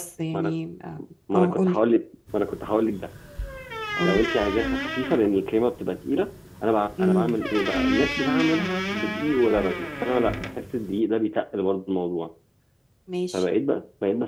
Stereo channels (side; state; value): both; identical; correlation 1.00